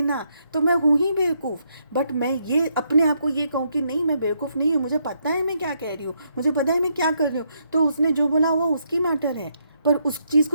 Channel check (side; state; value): both; inverted; correlation -0.76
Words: तो मैं हूँ ही बेवकूफ़। बट मैं ये अपने आप को ये कहूँ कि नहीं, मैं बेवकूफ़ नहीं हूँ, मुझे पता है मैं क्या कह रही हूँ, मुझे पता है मैं क्या कर रही हूँ, तो उसने जो बोला वो उसकी मैटर है। पर उस चीज़